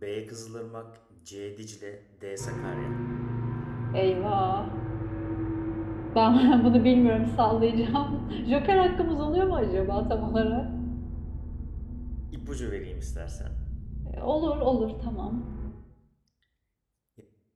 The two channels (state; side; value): identical; both; correlation 1.00